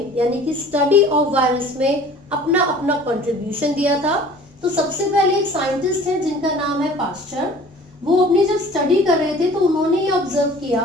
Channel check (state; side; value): normal; both; correlation 0.47